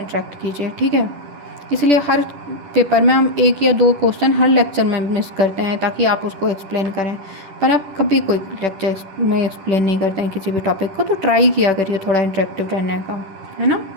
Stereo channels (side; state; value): left; late; 10 ms